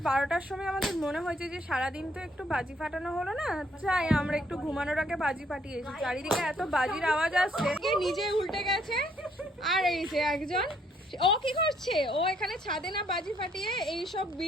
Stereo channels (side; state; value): both; normal; correlation 0.68